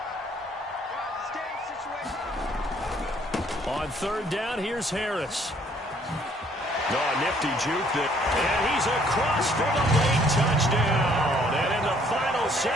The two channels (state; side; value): normal; both; correlation 0.63